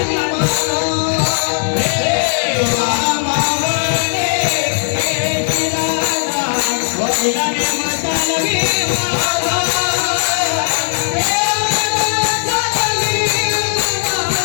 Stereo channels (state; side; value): silent; right; digital silence